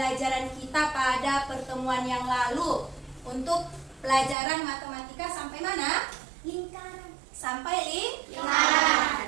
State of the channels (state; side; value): drops out; left; at 4.4 s